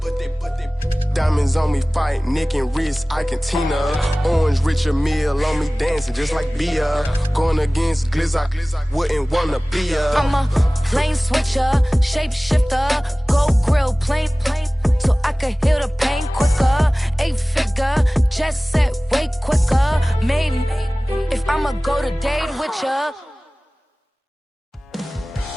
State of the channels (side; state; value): both; normal; correlation 0.98